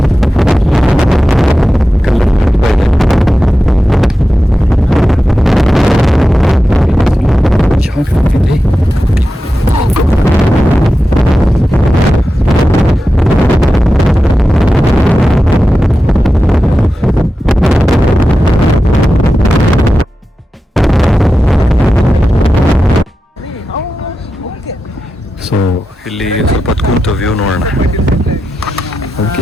ಸೊ ಇಲ್ಲಿ ಸ್ವಲ್ಪ ಹೊತ್ತು ಕೂತು ವ್ಯೂ ನೋಡೋಣ. ಅದಕ್ಕೆ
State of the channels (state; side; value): normal; both; correlation 0.92